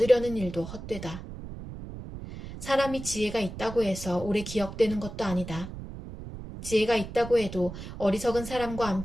일도 헛되다. 사람이 지혜가 있다고 해서 오래 기억되는 것도 아니다. 지혜가 있다고 해도 어리석은 사람과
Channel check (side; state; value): right; noise; rumble, 10 dB below the sound